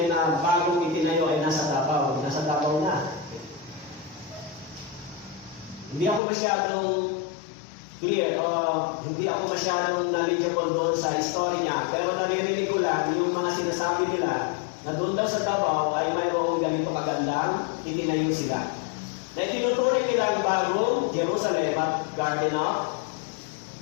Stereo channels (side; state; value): right; drops out; at 6.2 s